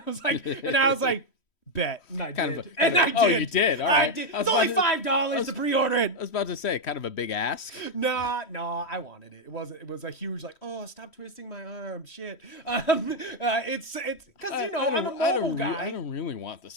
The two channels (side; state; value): right; late; 3.1 ms